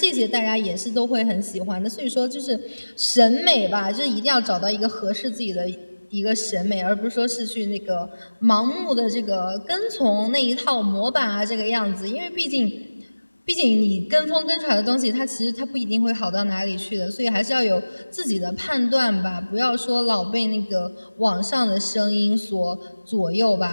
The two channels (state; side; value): inverted; both; correlation -1.00